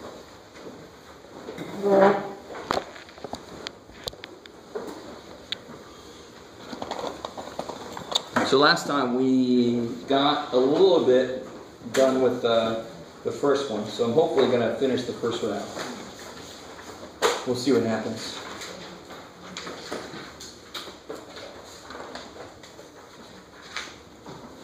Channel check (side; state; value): both; identical; correlation 1.00